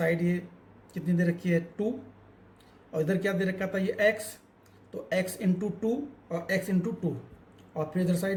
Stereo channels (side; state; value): both; identical; correlation 1.00